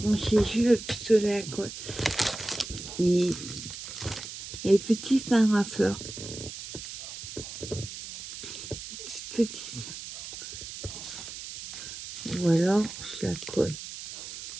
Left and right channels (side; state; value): right; noise; hiss, 10 dB below the sound